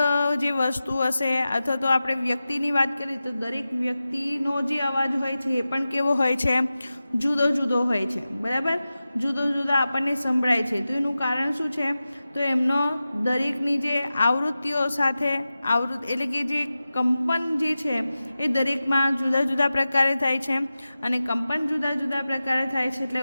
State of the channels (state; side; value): inverted; both; correlation -0.94